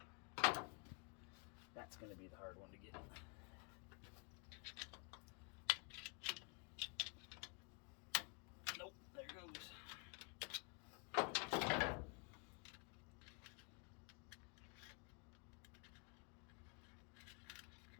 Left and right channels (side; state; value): right; quieter; 34.4 dB